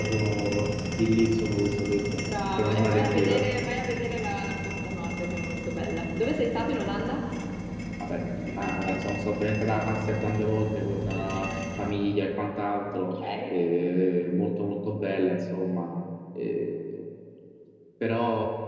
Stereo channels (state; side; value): identical; both; correlation 1.00